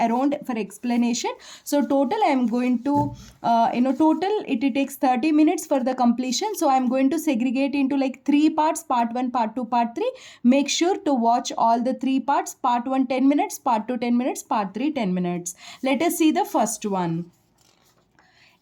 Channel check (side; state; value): both; identical; correlation 1.00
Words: for explanation. So total I'm going to total it takes 30 minutes for the completion. So I'm going to segregate into like 3 parts: part 1, part 2, part 3. Make sure to watch all the 3 parts: part 1 10 minutes, part 2 10 minutes, part 3 10 minutes. Let us see the first one.